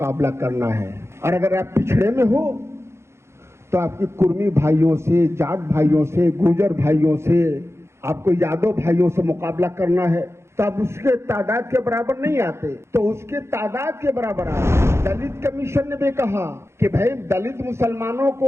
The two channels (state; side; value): late; left; 0.13 ms